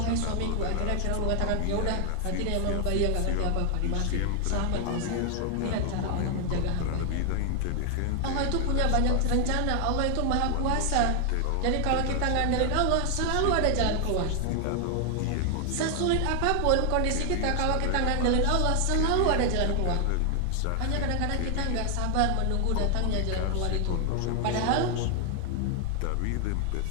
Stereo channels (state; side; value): different; both; correlation 0.00